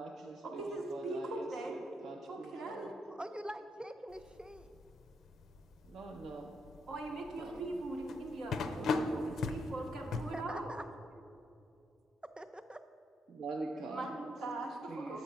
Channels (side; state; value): both; normal; correlation 0.78